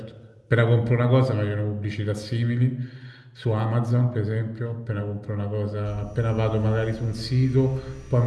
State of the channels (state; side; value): identical; both; correlation 1.00